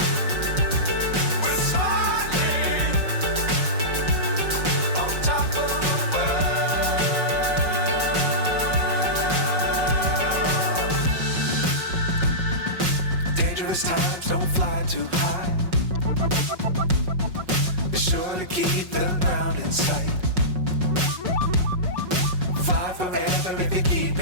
Times don't fly too high. Be sure to keep the ground in sight. Fly forever if you keep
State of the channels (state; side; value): late; left; 5.4 ms